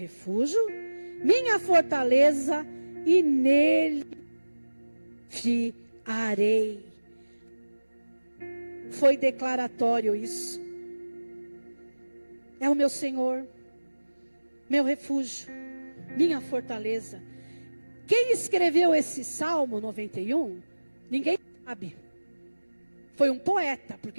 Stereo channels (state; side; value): inverted; both; correlation -1.00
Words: minha fortaleza, e nele fiarei. Foi declaratório isso. É o meu Senhor, meu refúgio, minha fortaleza. Quem escreveu esse Salmo 91? Ninguém sabe. Foi um poeta,